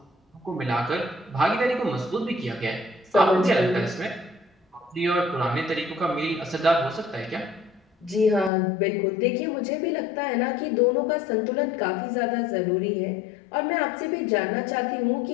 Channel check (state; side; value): drops out; right; at 8.5 s